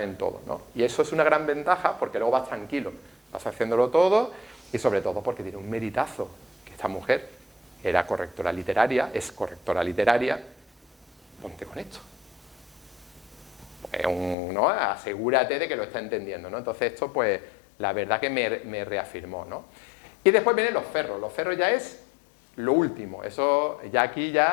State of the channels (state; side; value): drops out; right; at 14.4 s